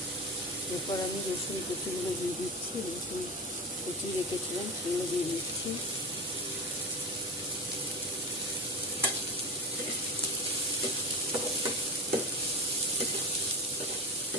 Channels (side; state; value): both; normal; correlation 0.24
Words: এরপর আমি রসুন কুচিগুলো দিয়ে দিচ্ছি। রসুন কুচি রেখেছিলাম সেগুলো দিয়ে দিচ্ছি।